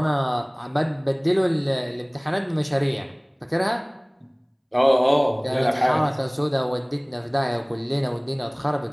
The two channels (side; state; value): both; identical; correlation 1.00